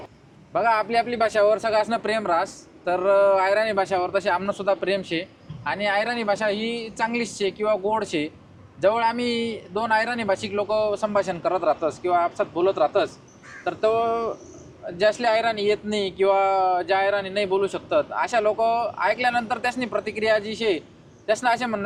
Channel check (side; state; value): both; identical; correlation 1.00